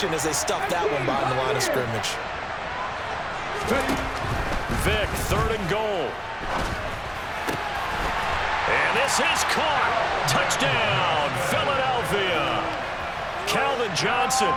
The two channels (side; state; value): both; identical; correlation 1.00